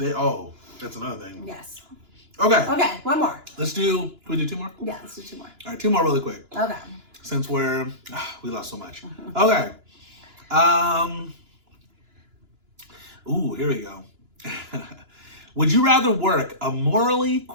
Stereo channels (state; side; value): late; left; 2.9 ms